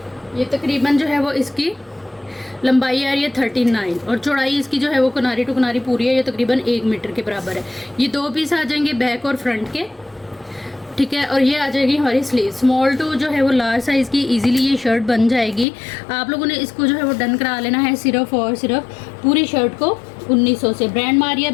ये तकरीबन जो है वो इसकी लंबाई आ रही है 39, और चौड़ाई इसकी जो है वो किनारी टू किनारी पूरी है, ये तकरीबन 1 मीटर के बराबर है। ये 2 पीस आ जाएंगे बैक और फ्रंट के। ठीक है, और ये आ जाएगी हमारी स्लीव। स्मॉल टू जो है वो लार्ज साइज़ की इजीली ये शर्ट बन जाएगी। आप लोगों ने इसको जो है वो डन करा लेना है सिर्फ और सिर्फ पूरी शर्ट को 1900 से। ब्रांड मारिया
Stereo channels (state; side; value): drops out; right; at 15.7 s